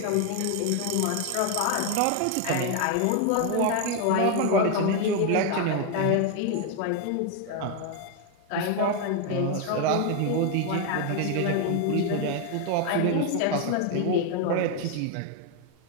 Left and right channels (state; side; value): different; both; correlation 0.01